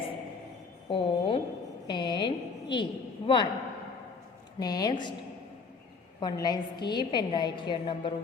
O N E. 1. Next, one line skip and write here number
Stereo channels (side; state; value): right; quieter; 4.8 dB